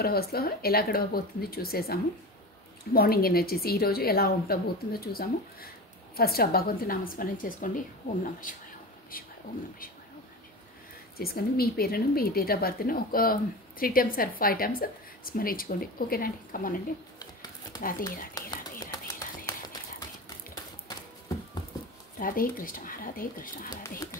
అవర్స్లో ఎలా గడవబోతుంది చూసేసాము. మార్నింగ్ ఎనర్జీస్ ఈరోజు ఎలా ఉండబోతుందో చూసాము. ఫస్ట్ ఆ భగవంతుని నామస్మరణ చేసుకోండి. ఓం నమ శివాయ, ఓం నమ శివాయ, ఓం నమ శివాయ, ఓం నమ శివాయ చేసుకొని మీ పేరును, మీ డేట్ ఆఫ్ బర్త్ను ఒక 3 times or 5 times స్మరించుకోండి. ఓకేనండి, కమానండి. రాధే రాధే రాధే రాధే రాధే రాధే రాధే రాధే కృష్ణ రాధే కృష్ణ రాధే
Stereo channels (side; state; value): both; normal; correlation 0.28